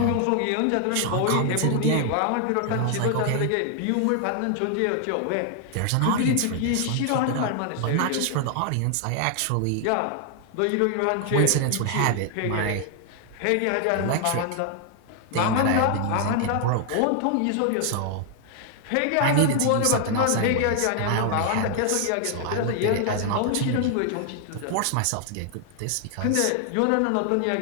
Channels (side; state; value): both; different; correlation 0.00